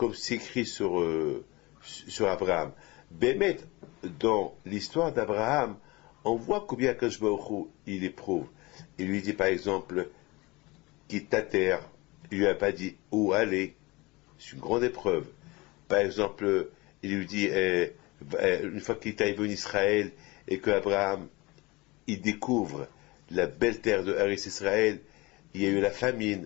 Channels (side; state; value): right; quieter; 23.2 dB